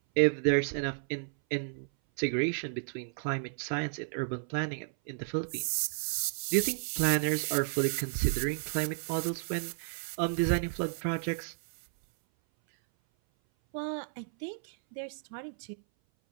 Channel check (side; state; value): left; silent; 56 dB below the other